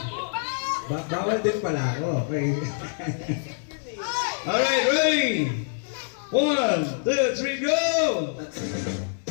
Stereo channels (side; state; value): right; silent; digital silence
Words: Bawal din pala ako. Okay. Alright, ready? 1, 2, 3, go!